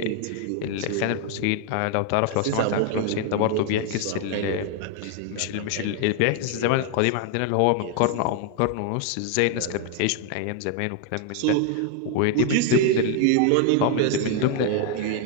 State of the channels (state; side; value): different; both; correlation 0.00